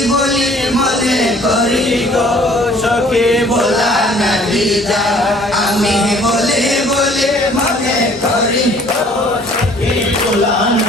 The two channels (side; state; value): both; normal; correlation 0.56